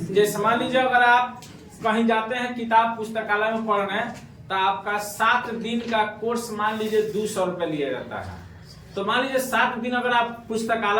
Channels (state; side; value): identical; both; correlation 1.00